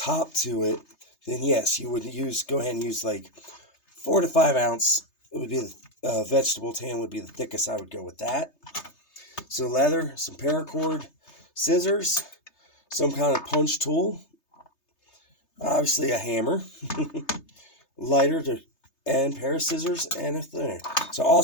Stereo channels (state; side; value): late; right; 3.3 ms